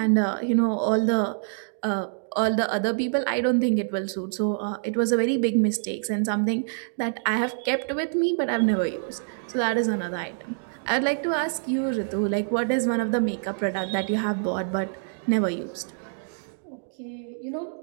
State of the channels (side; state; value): left; silent; digital silence